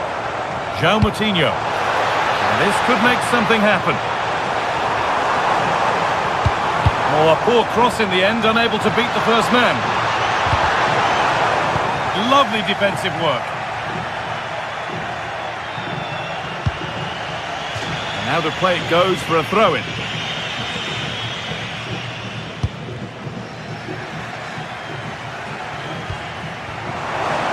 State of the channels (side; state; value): both; identical; correlation 1.00